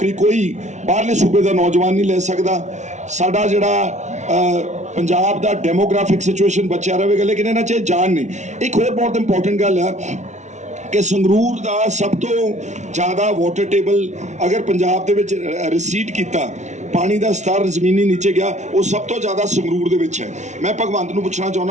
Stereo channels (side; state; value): left; late; 0.34 ms